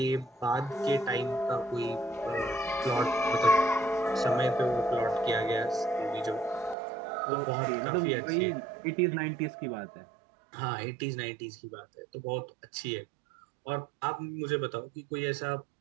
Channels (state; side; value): drops out; left; at 6.8 s